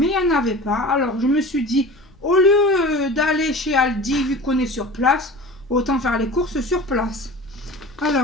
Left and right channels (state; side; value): noise; left; rumble, 29 dB below the sound